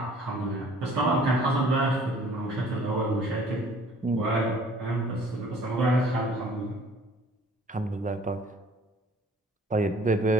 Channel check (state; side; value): normal; both; correlation 0.54